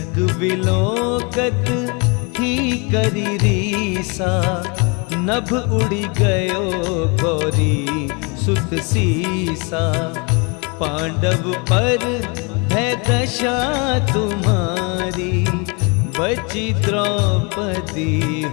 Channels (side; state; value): right; quieter; 31.4 dB